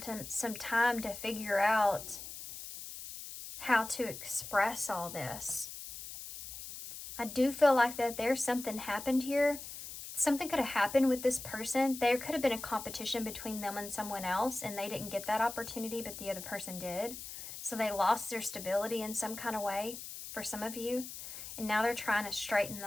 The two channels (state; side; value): noise; left; hiss, 10 dB below the sound